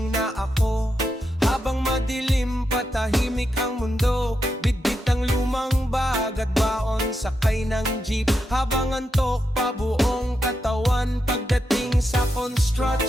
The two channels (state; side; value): normal; both; correlation 0.85